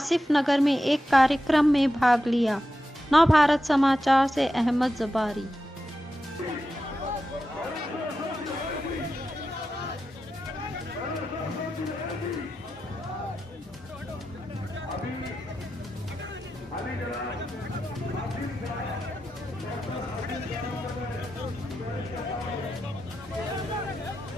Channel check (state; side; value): normal; both; correlation 0.90